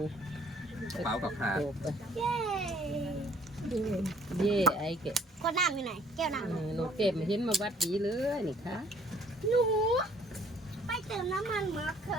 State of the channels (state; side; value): normal; both; correlation 0.59